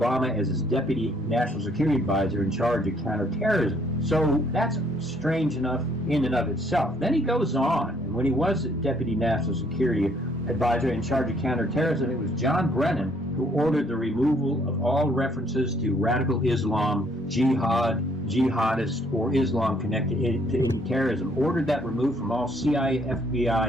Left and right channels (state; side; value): normal; both; correlation 0.65